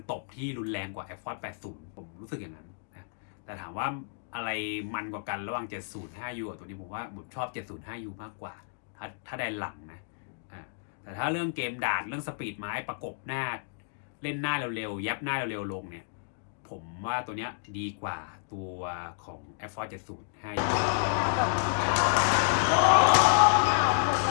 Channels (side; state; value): right; silent; digital silence